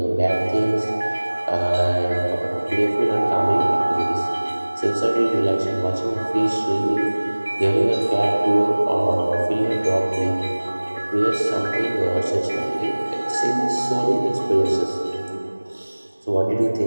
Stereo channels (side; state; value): both; inverted; correlation -1.00